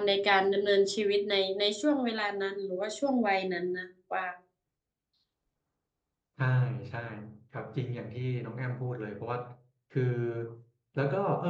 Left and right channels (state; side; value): identical; both; correlation 1.00